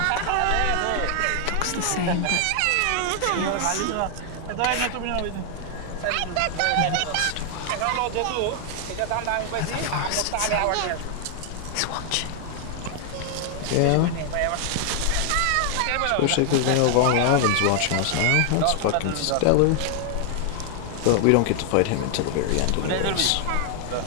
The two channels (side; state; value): both; different; correlation 0.00